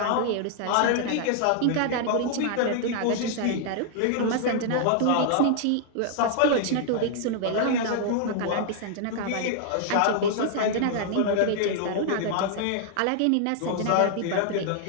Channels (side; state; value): both; different; correlation -0.01